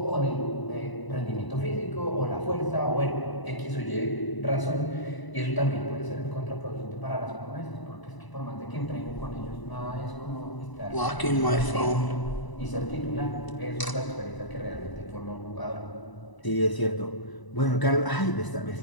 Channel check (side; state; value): right; late; 1.0 ms